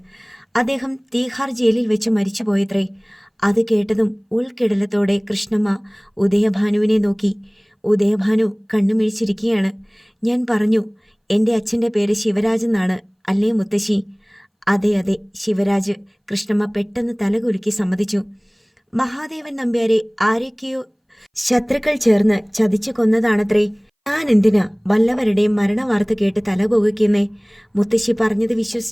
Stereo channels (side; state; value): both; identical; correlation 1.00